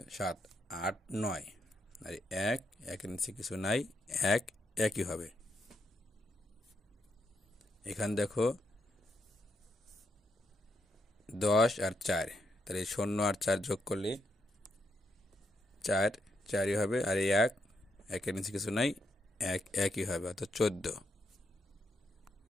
7 8 9 আর 1 1 নিচে কিছু নাই, 1 একই হবে। এখানে দেখো 10 আর 4, তাহলে 0 আর 4 যোগ করলে 4 4ই হবে, আর 1 1 নিচে কিছু নাই, 1 একই হবে, অর্থাৎ 14।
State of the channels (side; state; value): both; normal; correlation 0.79